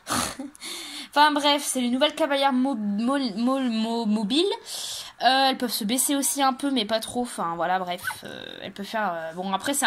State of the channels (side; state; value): both; identical; correlation 1.00